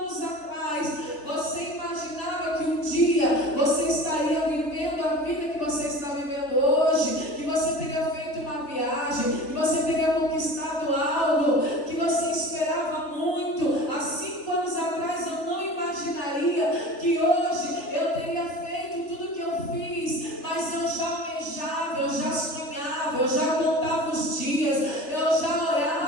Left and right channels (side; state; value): right; late; 3.3 ms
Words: atrás, você imaginava que um dia você estaria vivendo a vida que você está vivendo hoje, que você teria feito uma viagem, que você teria conquistado algo que você esperava muito? Há 5 anos atrás eu não imaginaria que hoje eu teria feito tudo que eu fiz, mas eu já almejava, eu já sonhava, eu já contava os dias, eu já